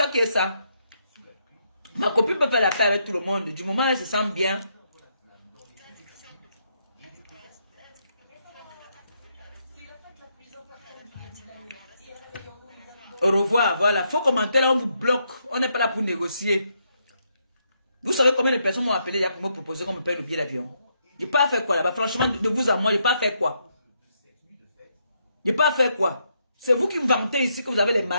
qui est ça. Ma copine peut faire la paix avec tout le monde. Du moment où elle se sent bien. Au revoir, voilà. Faut commenter là, on vous bloque. On n'est pas là pour négocier. Vous savez combien de personnes m'ont appelé pour me proposer qu'on me paye le billet d'avion? Je n'ai pas fait quoi là-bas. Franchement, de vous à moi, je n'ai pas fait quoi. Je n'ai pas fait quoi. C'est vous qui me vantez ici que vous avez les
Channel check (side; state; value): both; inverted; correlation -0.77